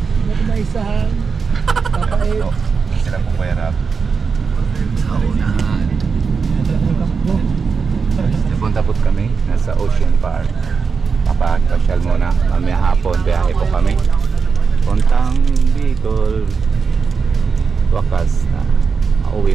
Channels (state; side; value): quieter; left; 5.4 dB